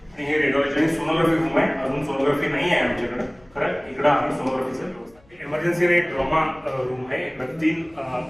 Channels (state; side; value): noise; left; hum, 30 dB below the sound